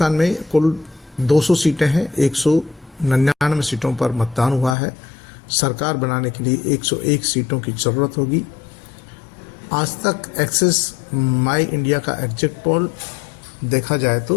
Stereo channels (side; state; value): right; drops out; at 4.8 s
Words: में कुल 200 सीटें हैं, 199 सीटों पर मतदान हुआ है। सरकार बनाने के लिए 101 सीटों की ज़रूरत होगी। आज तक एक्सिस माई इंडिया का एग्जिट पोल देखा जाए